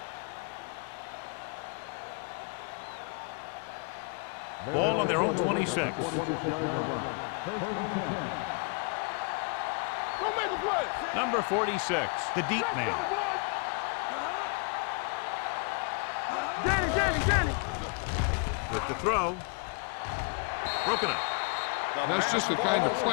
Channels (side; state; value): right; quieter; 34.3 dB